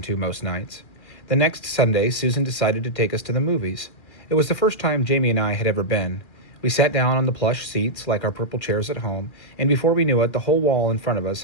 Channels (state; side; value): late; right; 2.0 ms